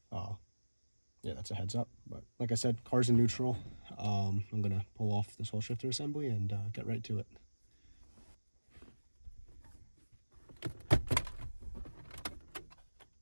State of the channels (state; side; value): inverted; both; correlation -1.00